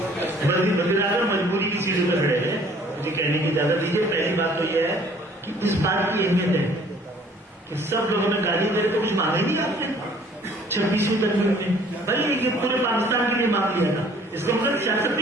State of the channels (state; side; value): normal; both; correlation 0.56